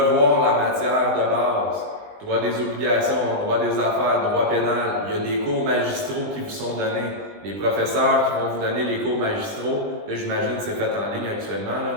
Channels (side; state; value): left; late; 20 ms